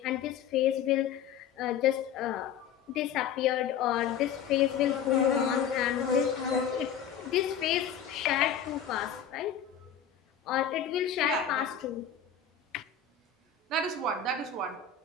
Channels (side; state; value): right; quieter; 8.0 dB